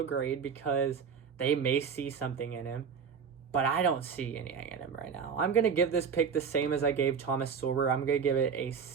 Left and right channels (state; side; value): quieter; left; 6.5 dB